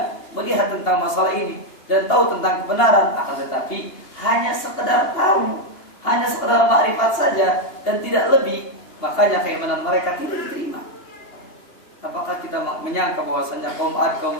melihat tentang masalah ini dan tahu tentang kebenaran, akan tetapi hanya sekedar tahu, hanya sekedar makrifat saja dan tidak lebih. Makanya keimanan mereka tidak diterima. Apakah kita menyangka bahwasanya kaum 'Ad, kaum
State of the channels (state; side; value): late; right; 2.8 ms